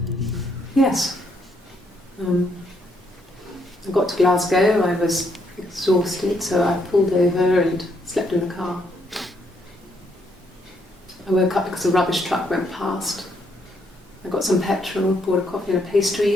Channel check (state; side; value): normal; both; correlation 0.73